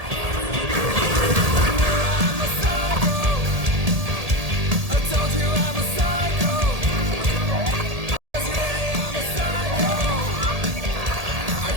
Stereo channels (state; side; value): late; left; 1.8 ms